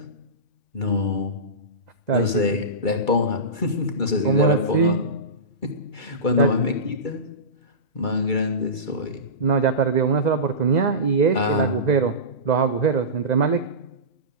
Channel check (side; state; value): right; late; 2.3 ms